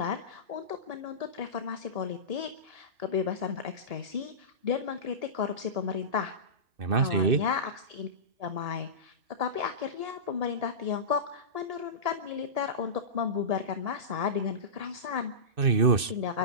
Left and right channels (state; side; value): late; left; 2.6 ms